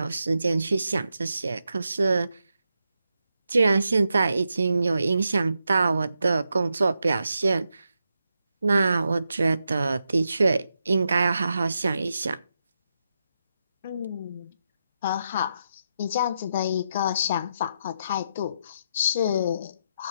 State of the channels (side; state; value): both; inverted; correlation -0.84